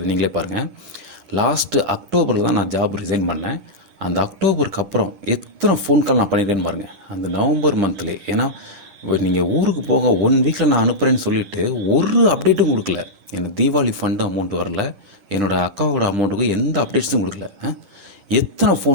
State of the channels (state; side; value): late; left; 10 ms